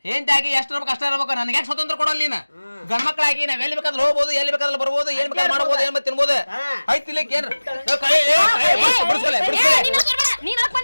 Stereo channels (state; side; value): inverted; both; correlation -1.00